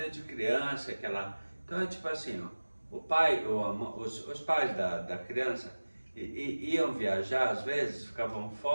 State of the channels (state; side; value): inverted; both; correlation -1.00